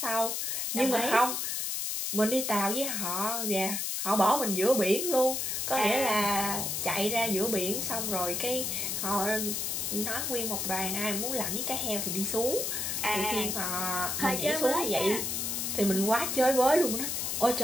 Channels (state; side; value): noise; left; hiss, 1 dB below the sound